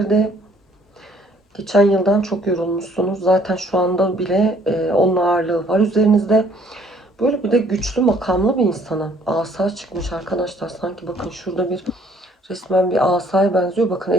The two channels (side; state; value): both; normal; correlation 0.61